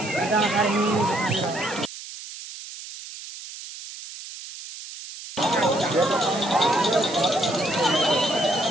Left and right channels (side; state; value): right; noise; hiss, 13 dB below the sound